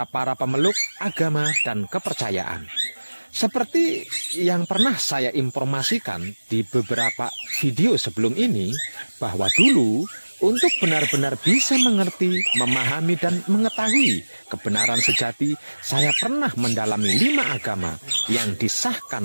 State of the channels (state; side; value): inverted; both; correlation -1.00